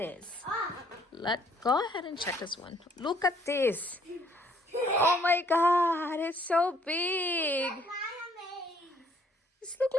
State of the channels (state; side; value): normal; both; correlation 0.63